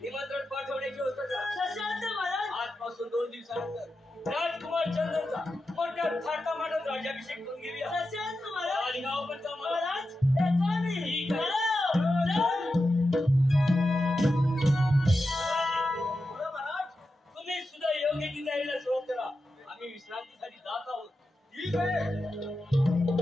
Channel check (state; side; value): normal; both; correlation 0.90